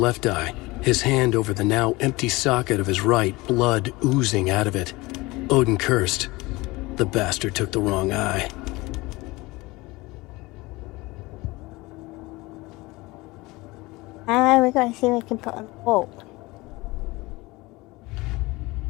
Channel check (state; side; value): quieter; right; 22.0 dB